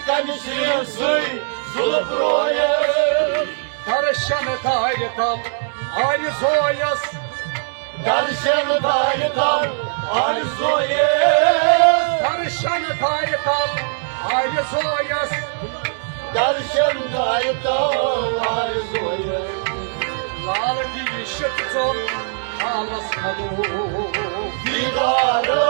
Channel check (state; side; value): silent; left; digital silence